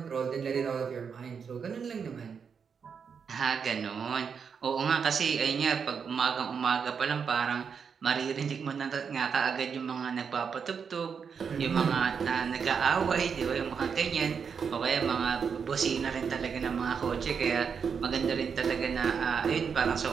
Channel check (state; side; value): quieter; left; 6.4 dB